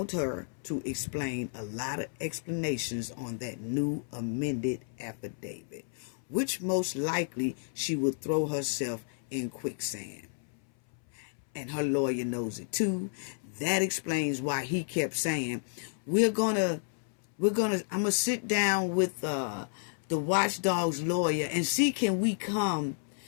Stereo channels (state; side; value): silent; right; 57 dB below the other